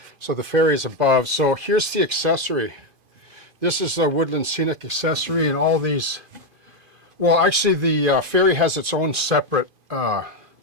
So the ferry is above. So here's the accessory. This is a woodland scenic accessory, and all these, well, actually the ferry has its own separate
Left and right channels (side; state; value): left; late; 2.5 ms